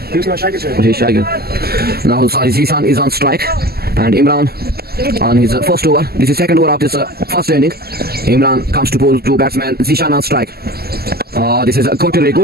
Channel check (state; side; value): late; left; 0.46 ms